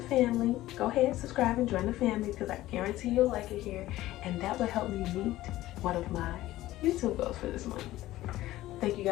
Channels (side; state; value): right; quieter; 15.8 dB